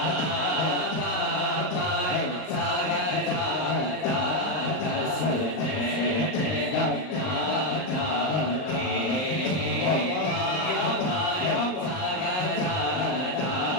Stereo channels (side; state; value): right; late; 38 ms